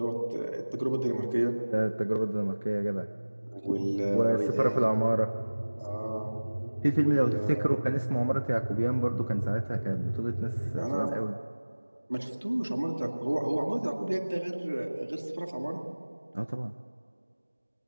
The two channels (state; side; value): inverted; both; correlation -1.00